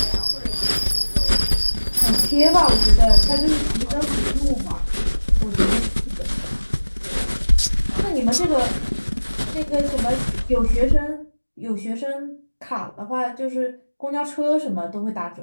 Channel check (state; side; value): inverted; both; correlation -1.00